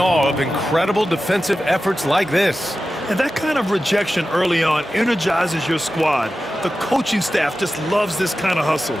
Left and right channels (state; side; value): normal; both; correlation 0.93